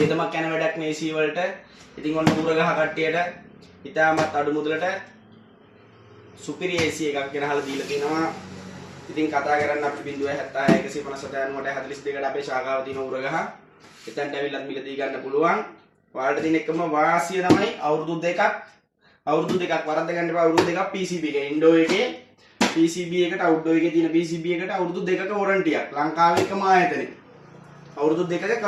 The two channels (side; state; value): both; identical; correlation 1.00